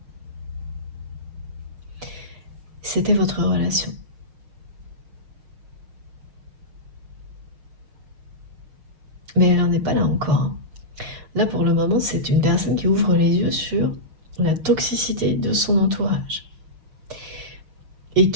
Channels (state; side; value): late; left; 6.4 ms